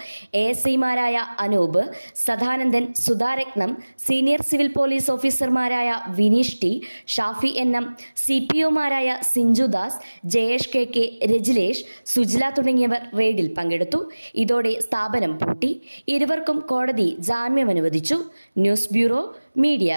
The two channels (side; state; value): both; inverted; correlation -1.00